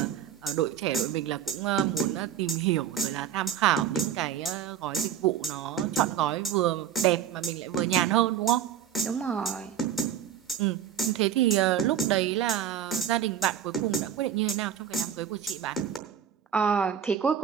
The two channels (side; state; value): left; quieter; 9.2 dB